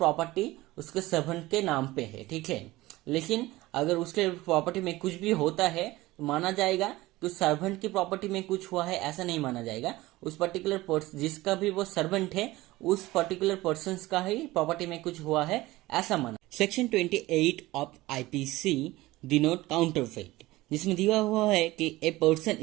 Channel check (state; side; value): quieter; left; 18.7 dB